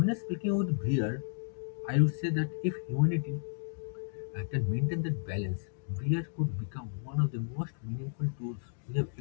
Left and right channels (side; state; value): right; silent; digital silence